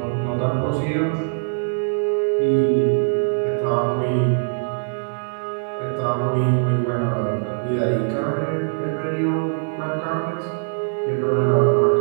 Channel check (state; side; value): silent; left; digital silence